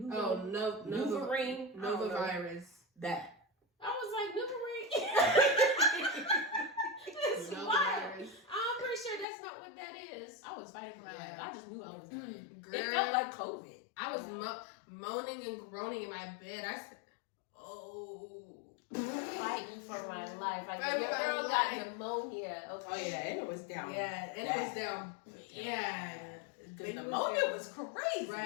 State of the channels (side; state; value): right; drops out; at 9.2 s